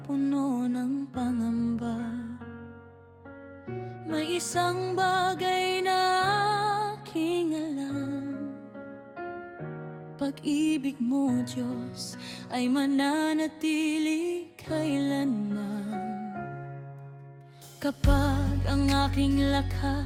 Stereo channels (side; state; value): both; identical; correlation 1.00